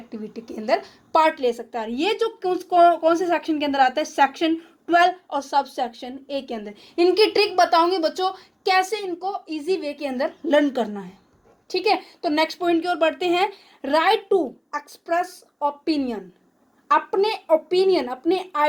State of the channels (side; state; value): both; identical; correlation 1.00